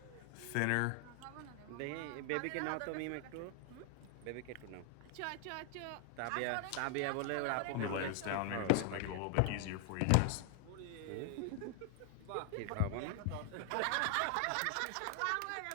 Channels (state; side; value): different; both; correlation 0.00